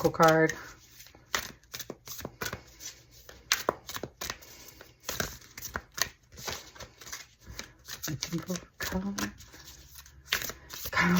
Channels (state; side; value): identical; both; correlation 1.00